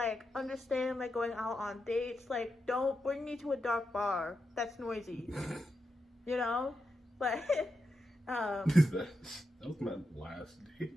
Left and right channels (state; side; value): normal; both; correlation 0.87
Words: understand, like, going out on dates, like, don't bring me to a dark bar that's noisy, you know? Like, That was my last